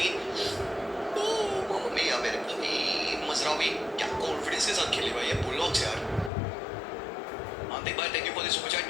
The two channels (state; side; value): drops out; right; at 6.3 s